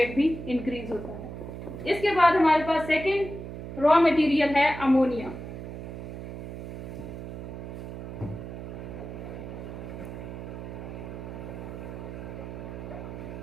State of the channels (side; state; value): right; noise; hum, 9 dB below the sound